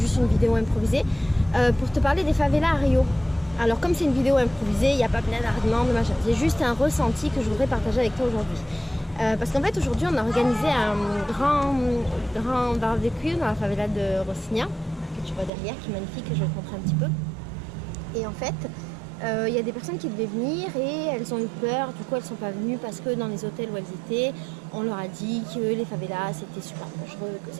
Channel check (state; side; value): drops out; left; at 15.5 s